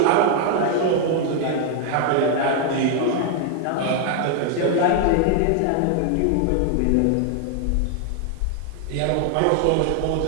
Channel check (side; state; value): both; different; correlation 0.00